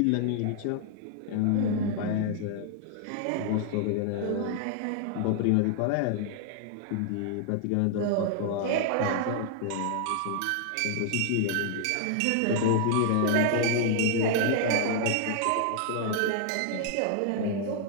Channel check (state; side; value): different; both; correlation 0.00